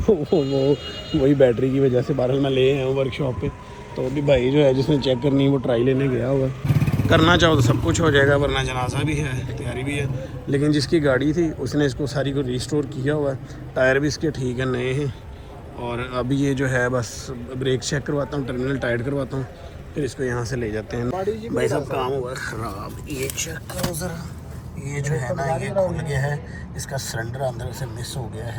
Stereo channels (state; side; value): identical; both; correlation 1.00